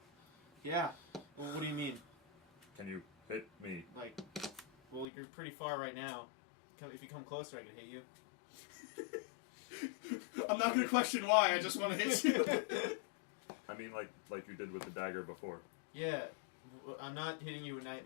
Yeah. Well, what do you mean? Can you hit me? Like, well, you're pretty far right now. If you come closer, I can hit you. I'm not gonna question why. I just want to hit you. I mean, like you did with the dagger before. Yeah. I'm not hitting you with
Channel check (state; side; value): drops out; right; at 5.1 s